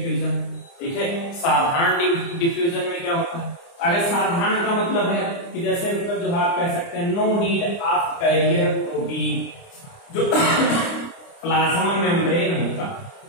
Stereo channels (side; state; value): right; late; 29 ms